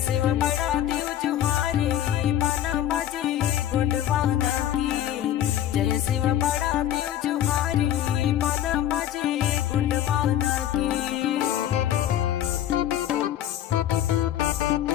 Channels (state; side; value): quieter; right; 11.7 dB